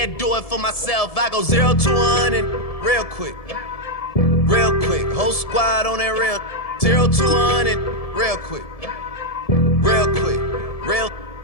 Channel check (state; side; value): late; right; 1.7 ms